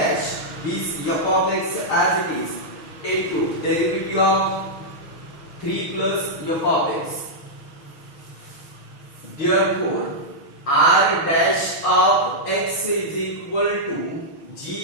this f of x as it is, into derivative of 3 plus f of x. Therefore, r dash of x is equal to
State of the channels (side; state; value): right; late; 6.3 ms